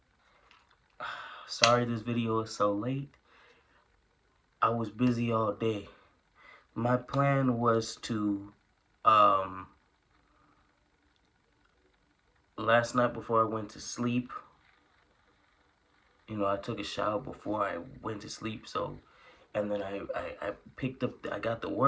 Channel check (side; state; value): both; identical; correlation 1.00